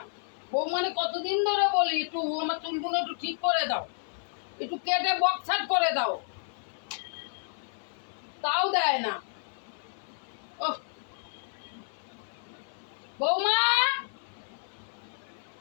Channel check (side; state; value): right; silent; 57 dB below the other